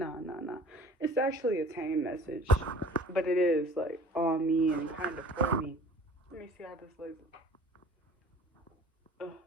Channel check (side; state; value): both; normal; correlation 0.47